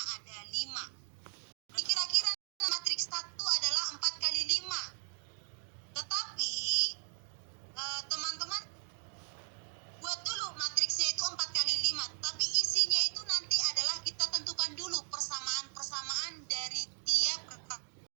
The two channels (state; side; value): silent; left; digital silence